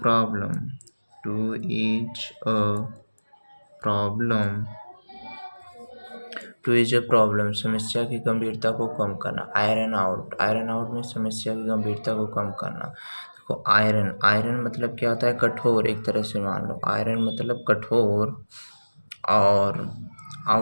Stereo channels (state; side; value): inverted; both; correlation -1.00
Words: problem, समस्या की गंभीरता को कम करना. आयरन आउट में समस्या की गंभीरता को कम करना. देखो, आयरन मतलब क्या होता है? कठोर. एक तरह से मान लो आयरन मतलब कठोर और